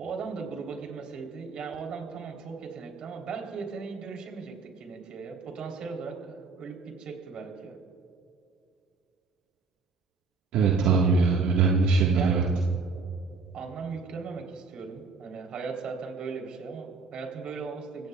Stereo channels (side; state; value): left; quieter; 4.4 dB